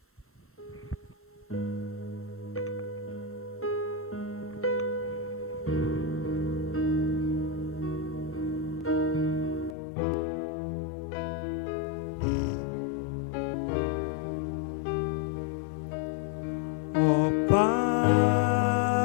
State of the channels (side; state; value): right; drops out; at 9.8 s